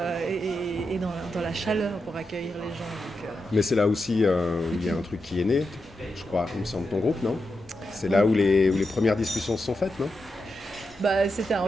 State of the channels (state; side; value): normal; both; correlation 0.87